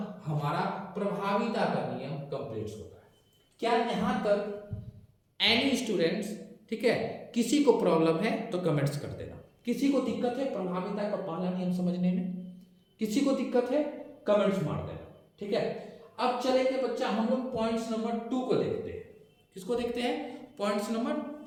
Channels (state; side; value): identical; both; correlation 1.00